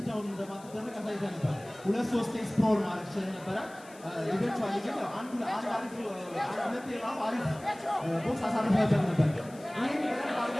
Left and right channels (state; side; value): noise; left; hiss, 22 dB below the sound